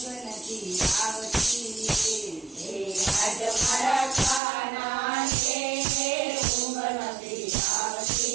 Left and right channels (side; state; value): left; drops out; at 4.4 s